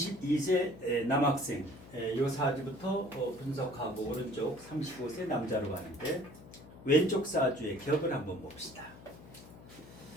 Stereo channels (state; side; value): noise; left; hum, 18 dB below the sound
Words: 남학생 이 사주부터 분석하고 오른쪽 35세 남자로 가는데 왼쪽 사주의 격을 한번 봅시다.